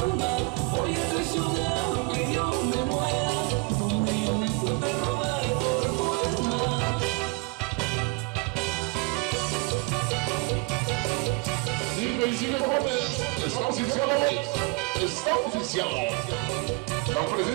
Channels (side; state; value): left; quieter; 27.0 dB